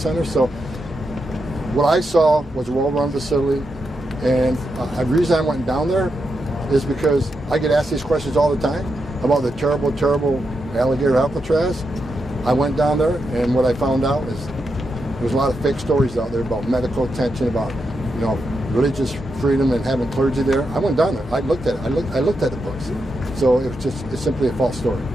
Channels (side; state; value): both; normal; correlation 0.85